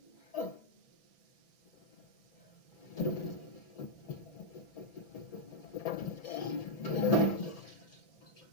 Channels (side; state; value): right; late; 1.6 ms